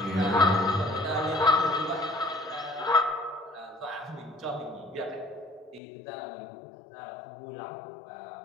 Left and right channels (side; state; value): right; drops out; at 5.8 s